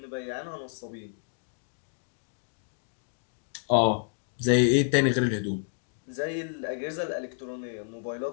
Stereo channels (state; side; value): silent; right; digital silence